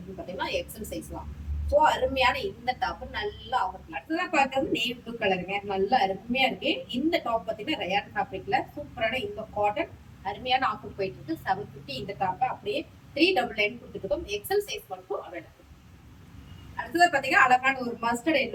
பாத்தீங்கன்னா எக்ஸல் சைஸ் தான். ஸோ அருமையான இந்த டாப் நல்ல ஆஃபர். அடுத்ததான் பார்க்கறது நேவி ப்ளூ கலருங்க. நல்லா அருமையா இருக்கு. இந்த டாப் பாத்தீங்கன்னா ரயான் ஃபேப்ரிக்ல சூப்பரான இந்த காட்டன் அருமையான ஆஃபர் போயிட்டு இருக்கு. 750 இந்த டாப் அப்படியே 399 கொடுத்துருக்கோம். எக்ஸல் சைஸ் மட்டும் அவைலபிள். அடுத்தது பாத்தீங்கன்னா அழகான ஒரு மஸ்டர்ட்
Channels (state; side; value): identical; both; correlation 1.00